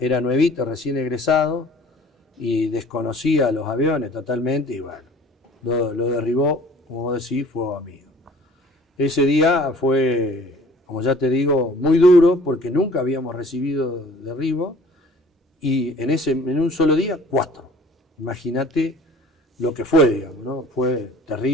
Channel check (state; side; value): normal; both; correlation 0.50